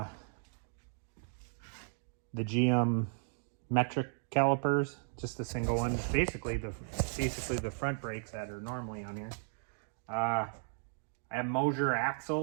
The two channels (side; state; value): left; silent; 54 dB below the other